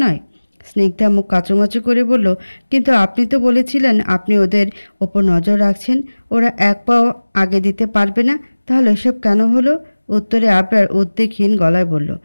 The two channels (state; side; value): inverted; both; correlation -1.00